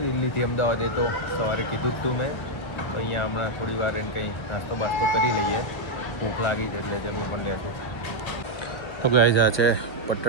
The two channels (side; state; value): right; late; 1.3 ms